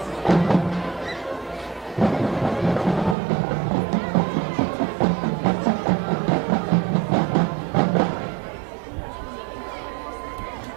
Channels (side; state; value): left; drops out; at 3.2 s